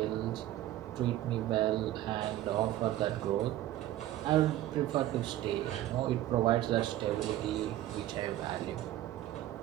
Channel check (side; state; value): left; quieter; 13.9 dB